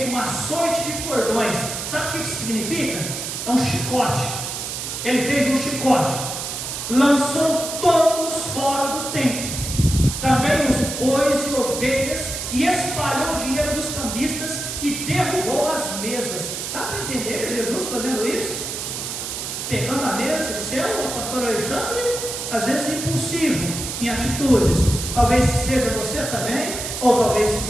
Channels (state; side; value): noise; right; hiss, 5 dB below the sound